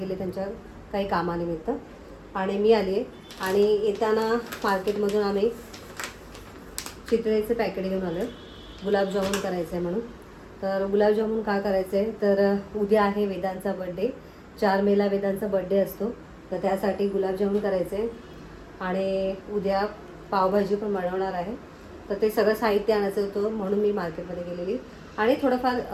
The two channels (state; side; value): identical; both; correlation 1.00